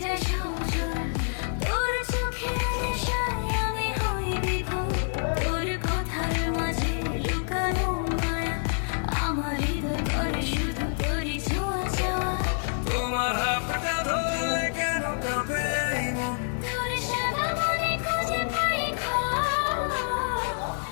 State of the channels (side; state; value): right; silent; digital silence